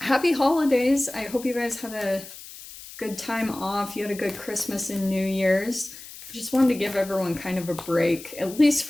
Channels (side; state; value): left; noise; hiss, 15 dB below the sound